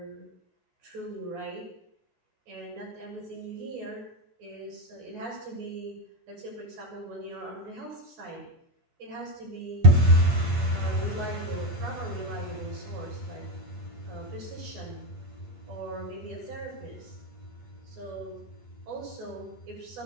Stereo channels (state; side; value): late; left; 8.6 ms